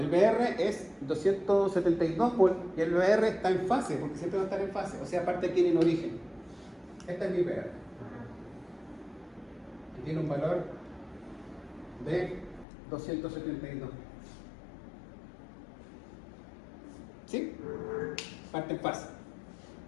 el BR es 272 volts y el BR está en fase, porque siempre va a estar en fase, o sea, aparte aquí en origen. Este es mi BR. Que tiene un valor de 272. ¿Sí? Parte en fase.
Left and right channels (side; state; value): right; drops out; at 12.7 s